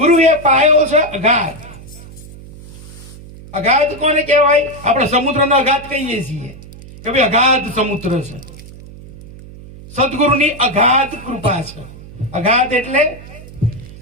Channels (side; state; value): right; noise; hum, 17 dB below the sound